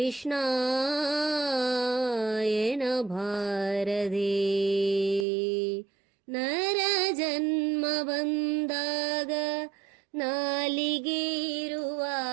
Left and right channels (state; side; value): drops out; left; at 5.2 s